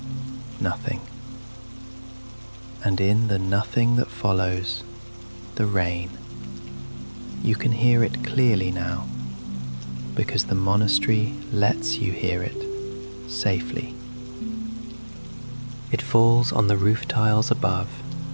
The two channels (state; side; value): inverted; both; correlation -1.00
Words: nothing. And in the nothing that follows, the rain. You can hear it clearly now, because the monastery lets you hear it safely. It falls on the roof tiles above